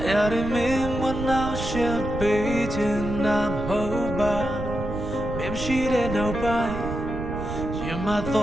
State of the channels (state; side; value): noise; right; rumble, 7 dB below the sound